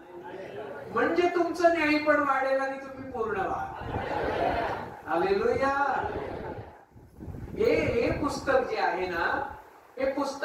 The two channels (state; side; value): identical; both; correlation 1.00